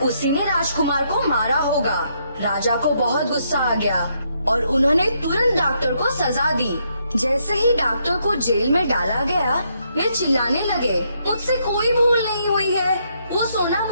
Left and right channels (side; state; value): both; inverted; correlation -0.75